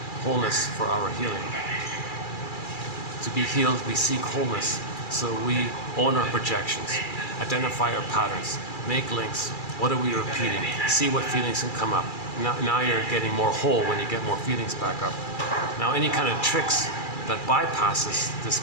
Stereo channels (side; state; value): right; late; 2.4 ms